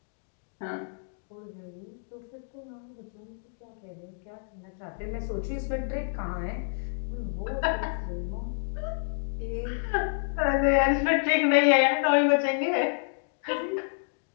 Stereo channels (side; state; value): right; silent; digital silence